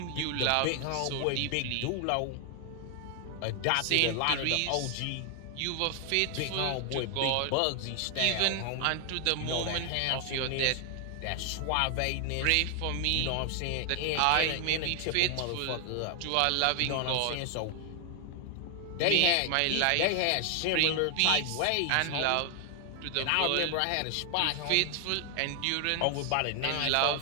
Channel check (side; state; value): both; different; correlation 0.00